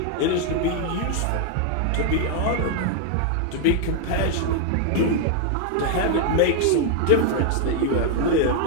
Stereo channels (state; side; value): different; both; correlation 0.00